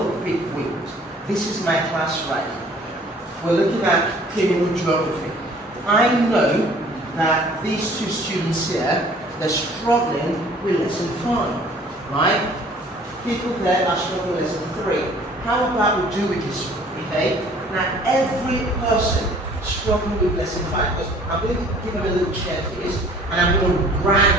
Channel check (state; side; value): normal; both; correlation 0.53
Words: quick wins. This is my class right. We're looking at criminal geography. I know that these two students here, they're struggling with lesson 5, right? People there are struggling with lesson 3. How about we do it this way, okay? Now, every person struggling with lesson 5, because I'm going to give them a little checklist, and I'm going to